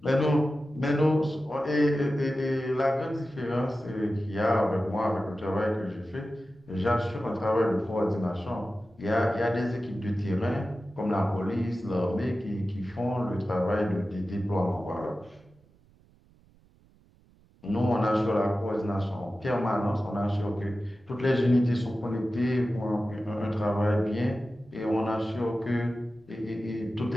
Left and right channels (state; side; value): noise; right; rumble, 30 dB below the sound